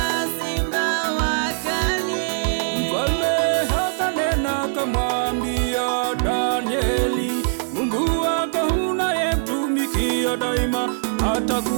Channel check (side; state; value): left; silent; digital silence